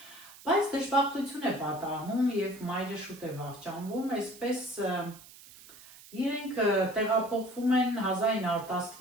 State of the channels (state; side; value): noise; right; hiss, 20 dB below the sound